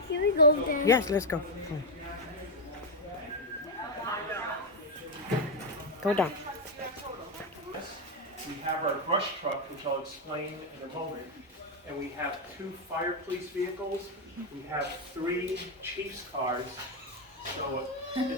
we go there? Yes, let's go. Go down. We have our brush truck, which I'll explain in a moment, and we have 2 fire police vehicles. We have 3 chief's cars, so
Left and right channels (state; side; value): normal; both; correlation 0.03